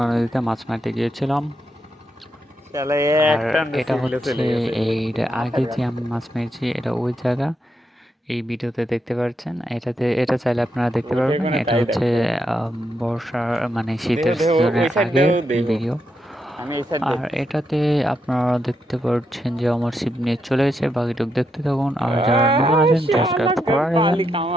নদীতে মাছ মারতে গিয়েছিলাম। শালা আর এক টান এটা সিভিলে হচ্ছে চলে গেছে এর আগে যে আমি মাছ মেরেছি এটা ওই জায়গা, এই ভিডিওতে দেখতে পাচ্ছেন। এটা চাইলে আপনারা দেখতে ওইটা পারবেন। কোনো এটা তাই হচ্ছে দেখো। বর্ষার মানে দেহ শীতের দেহ ওই সিজনের সাইড আগের দেহ দেহ ভিডিও। আমি এই সাইড আর দেখতেছি। এটাতে আপনারা দেখতে পাচ্ছেন যে আমার সিপ নিয়ে চলে গেছে। বাকিটুক দেখতে থাকুন। আর যারা নতুন আছেন সাবস্ক্রাইব করে দেবেন। পালি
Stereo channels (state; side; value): normal; both; correlation 0.82